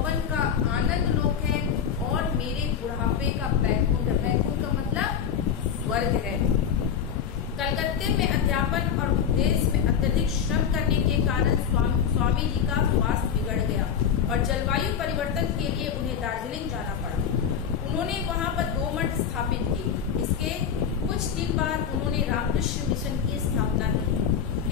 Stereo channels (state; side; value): quieter; right; 7.8 dB